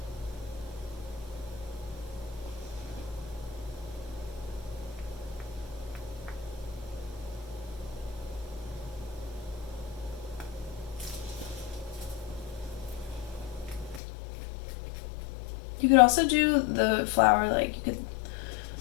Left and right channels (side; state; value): right; drops out; at 14.0 s